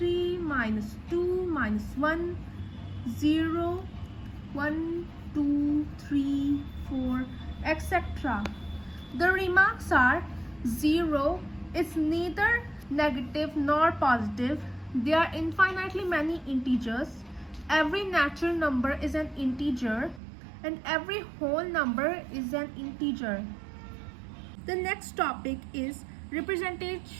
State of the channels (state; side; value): drops out; left; at 20.2 s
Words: -2, -1, 0, 1, 2, 3, 4, etc. The remarks are 0 is neither negative nor positive. There are infinitely many integers. Every natural number is an integer, and every whole number is an integer. The next topic is